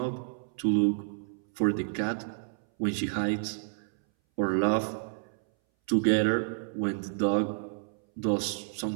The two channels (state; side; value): silent; left; 58 dB below the other